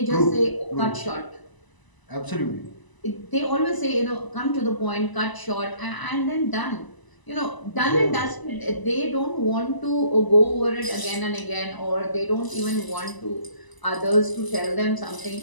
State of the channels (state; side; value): late; right; 1.0 ms